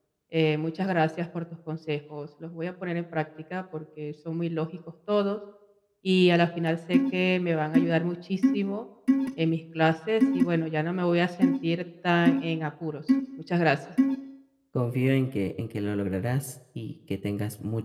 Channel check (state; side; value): identical; both; correlation 1.00